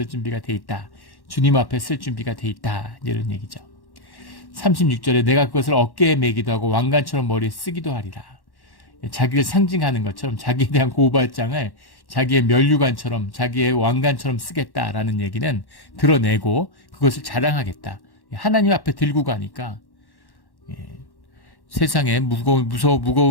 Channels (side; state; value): right; late; 1.1 ms